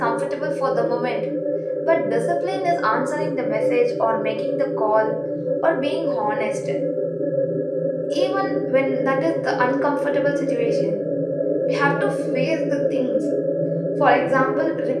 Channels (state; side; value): identical; both; correlation 1.00